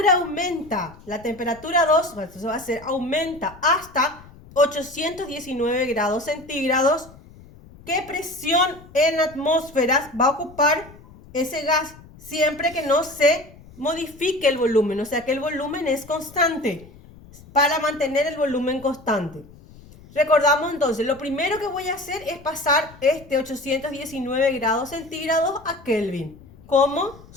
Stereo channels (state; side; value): noise; left; rumble, 21 dB below the sound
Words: aumenta, la temperatura 2, entonces va a ser aumenta hasta 819 grados centígrados, ¿qué presión en atmósferas va a ocupar ese gas siempre que no se modifique el volumen? O sea que el volumen es constante, para mantener el volumen constante. Recordamos entonces, lo primero que voy a hacer es pasar este 819 grados centígrados a Kelvin. ¿Cómo?